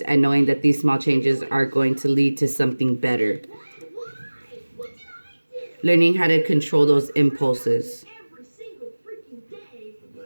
and knowing that these small changes are going to lead to something better. Learning how to control those impulses.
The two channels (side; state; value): both; inverted; correlation -1.00